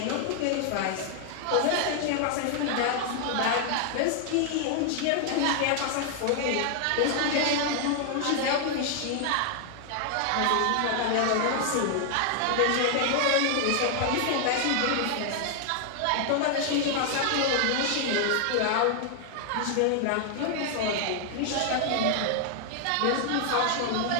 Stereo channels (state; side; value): different; both; correlation 0.00